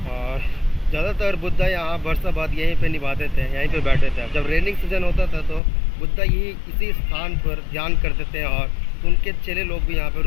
और ज़्यादातर बुद्धा यहाँ वर्षाबाद यहीं पे निभाते थे, यहीं पे बैठे थे। जब रेनिंग सीजन होता था तो बुद्धा यही इसी स्थान पर ध्यान करते थे और उनके चेले लोग भी यहाँ पर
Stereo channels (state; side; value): drops out; right; at 5.6 s